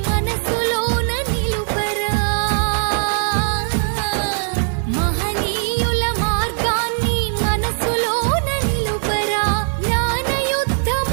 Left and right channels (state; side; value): silent; left; 66 dB below the other